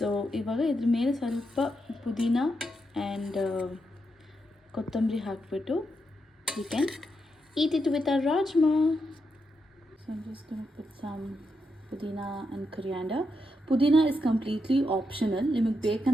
ಇವಾಗ ಇದ್ರ ಮೇಲೆ ಸ್ವಲ್ಪ ಪುದೀನ ಆ್ಯಂಡ್ ಕೊತ್ತಂಬರಿ ಹಾಕ್ಬಿಟ್ಟು you can eat it with a rajma. So I'm just going to put some pudina and coriander. Pudina is completely optional. ನಿಮಗೆ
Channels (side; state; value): both; normal; correlation 0.83